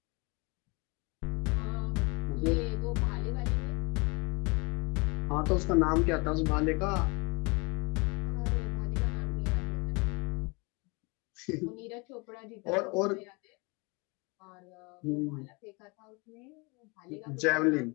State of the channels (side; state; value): right; quieter; 29.1 dB